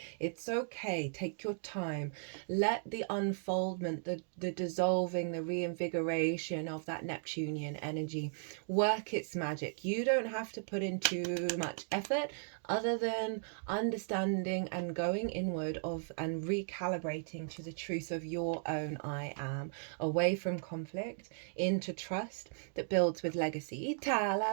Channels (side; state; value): left; silent; digital silence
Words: It's okay. Take your time. Let the unfoldment, the dissolving, the reinvigoration of that Neptunian energy work its magic. You don't have to put in too much effort other than understanding and going inward and recalibrating to the truth of your own I am, away from conflict into trust that builds with legacy.